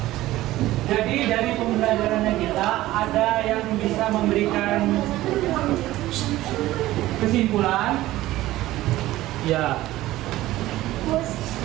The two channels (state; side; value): quieter; left; 16.2 dB